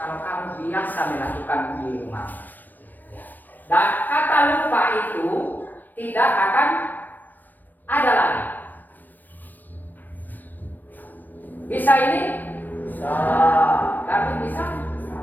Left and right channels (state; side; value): late; right; 0.089 ms